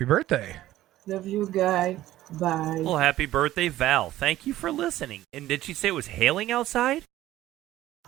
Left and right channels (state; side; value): quieter; left; 14.8 dB